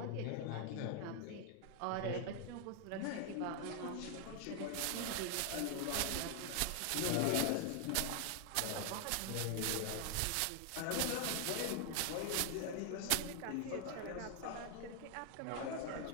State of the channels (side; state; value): both; different; correlation 0.00